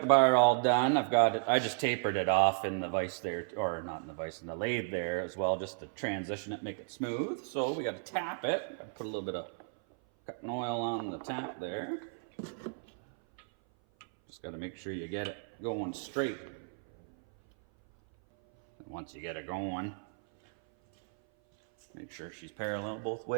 bar all done. I've got it, I just tapered it off in the vise there, or not in the vise, in the lathe there as well, just to transition it, make it smooth. So we got to tap it. Got to put a little bit of cutting oil on the tap there. Just got to make sure you get it going straight. And once you get it going, make sure she's parallel both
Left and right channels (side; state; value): left; silent; 55 dB below the other